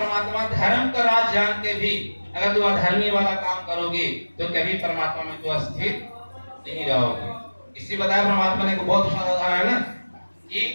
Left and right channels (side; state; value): both; inverted; correlation -1.00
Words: धर्म का राज जान के भी अगर तू अधर्मी वाला काम करोगे तो कभी परमात्मा में तू स्थिर नहीं रहोगे। इसी बताया परमात्मा ने को बहुत उदाहरण है ना कि